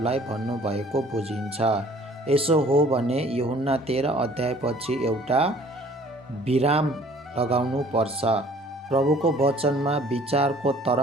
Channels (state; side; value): normal; both; correlation 0.54